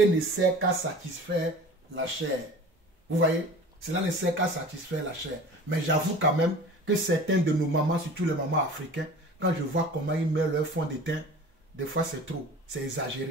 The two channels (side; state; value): both; normal; correlation 0.40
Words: ne sert qu'à satisfaire la chair. Vous voyez? Cela ne sert qu'à satisfaire la chair. Mais j'avoue quand même que certains de nos mamans, surtout les mamans africaines, quand je vois comment ils mettent leur fond de teint, des fois c'est trop, c'est